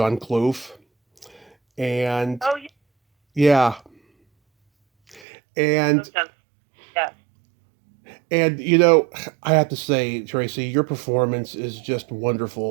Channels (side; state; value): left; drops out; at 5.2 s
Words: Clough, and Oh, yeah, and yeah. and I have to say, Tracy, your performance is just